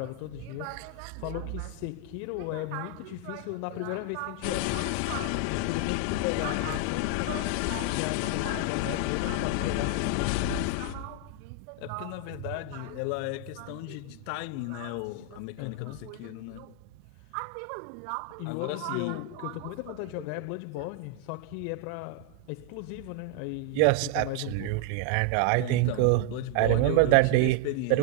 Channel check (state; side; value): different; both; correlation 0.00